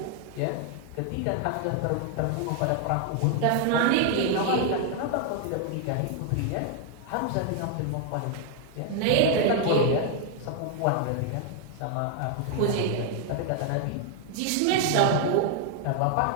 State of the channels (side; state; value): both; different; correlation 0.00